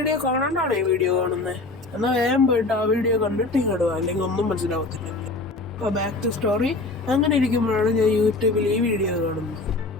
കാണാണ്ടാണ് ഈ വീഡിയോ കാണുന്നത്. എന്നാൽ വേഗം പോയിട്ട് ആ വീഡിയോ കണ്ടിട്ട് ഇങ്ങോട്ട് പോകാം, അല്ലെങ്കിൽ ഒന്നും മനസ്സിലാവത്തില്ല. അപ്പോൾ ബാക്ക് ടു സ്റ്റോറി. അങ്ങനെ ഇരിക്കുമ്പോഴാണ് ഞാൻ യൂട്യൂബിൽ ഈ വീഡിയോ കാണുന്നത്.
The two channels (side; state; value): right; quieter; 3.3 dB